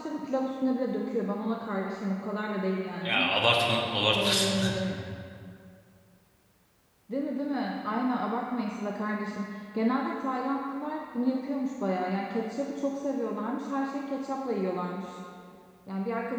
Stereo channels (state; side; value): identical; both; correlation 1.00